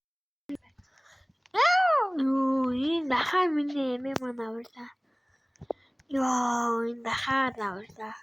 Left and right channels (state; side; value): identical; both; correlation 1.00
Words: 이 나가면 애매만 나올다. 나가 나올다.